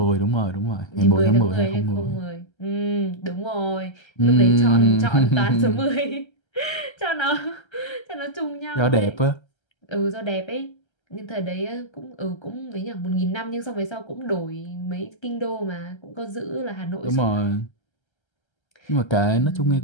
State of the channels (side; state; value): right; late; 1.3 ms